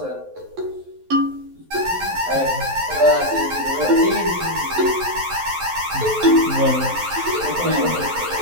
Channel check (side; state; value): left; late; 11 ms